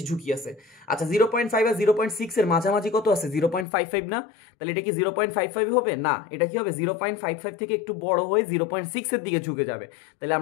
ঝুঁকি আছে। আচ্ছা 0.5 আর 0.6 এর মাঝামাঝি কত আছে 0.55 না, তাহলে এটা কি 0.55 হবে না, এটা কি হবে 0.55 থেকে একটু বড় হয়ে 0.6 এর দিকে ঝুঁকে যাবে। তাহলে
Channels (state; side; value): drops out; right; at 3.7 s